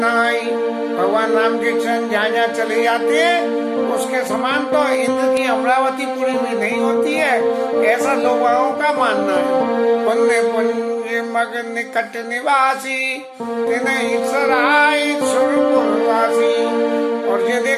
भगवान राम के चरण जहाँ जहाँ चले जाते हैं उसके समान तो इंद्र की अमरावती पूरी भी नहीं होती है, ऐसा लोगों का मानना है। पुण्य पुण्य मग निकट निवासी, तिन्हीं सराय सुरपुरवासी। और ये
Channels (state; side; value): identical; both; correlation 1.00